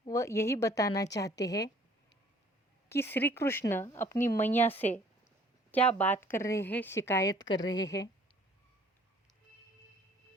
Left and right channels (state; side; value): normal; both; correlation 0.56